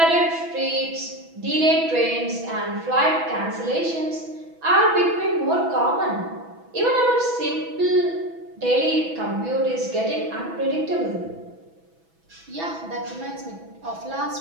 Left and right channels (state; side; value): late; left; 6.1 ms